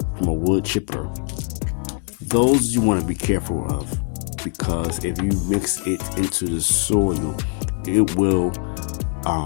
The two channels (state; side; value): quieter; right; 36.5 dB